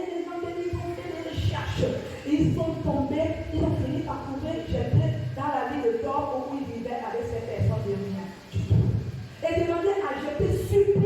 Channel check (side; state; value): both; identical; correlation 1.00